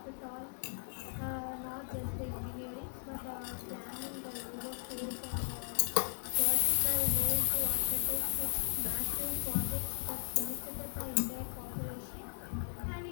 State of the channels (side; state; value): right; silent; 53 dB below the other